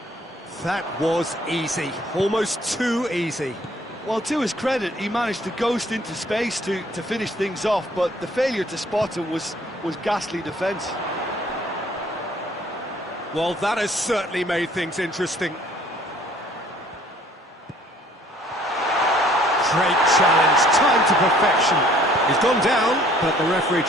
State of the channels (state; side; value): normal; both; correlation 0.58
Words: That was easy, almost too easy. Well, to his credit, he managed to ghost into space to finish things off, but the failure to spot him was ghastly defence. Well, that has certainly made things interesting. Great challenge, time to perfection. He's gone down, but the referee